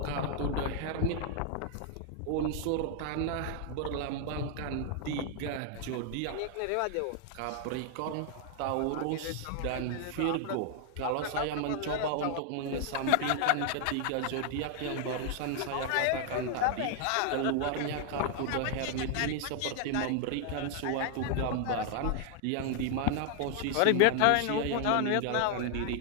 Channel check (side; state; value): both; different; correlation 0.00